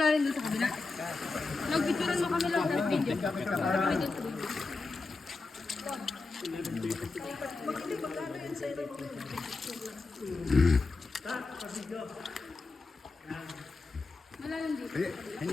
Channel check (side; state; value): right; quieter; 3.8 dB